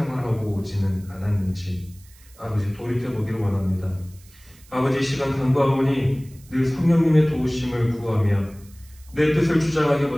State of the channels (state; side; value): noise; right; hiss, 26 dB below the sound